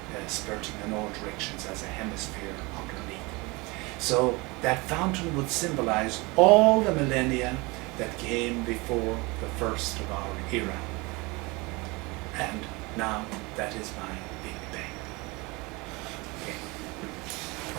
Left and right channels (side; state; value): left; quieter; 25.3 dB